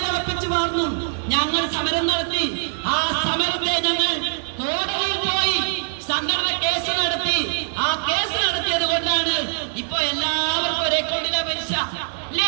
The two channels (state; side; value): silent; left; digital silence